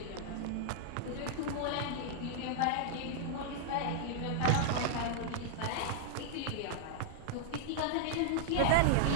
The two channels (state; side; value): different; both; correlation -0.01